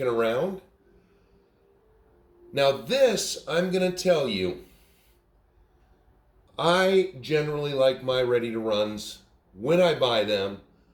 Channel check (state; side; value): identical; both; correlation 1.00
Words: around. Now this, I'm going to tell you, I generally like my ready to runs. When I buy them,